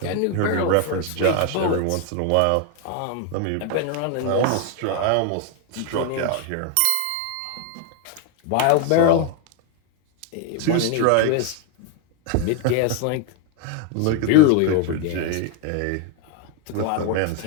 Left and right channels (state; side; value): different; both; correlation 0.01